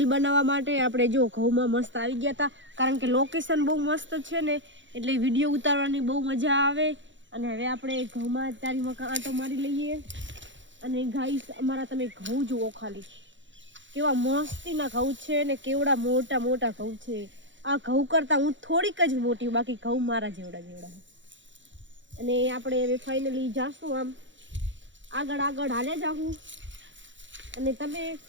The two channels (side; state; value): left; late; 0.54 ms